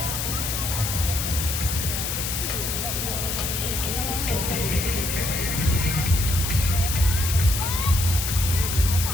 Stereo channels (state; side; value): noise; left; hiss, 2 dB below the sound